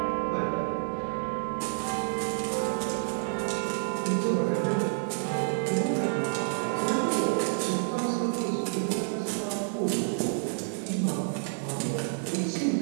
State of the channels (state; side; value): silent; left; 59 dB below the other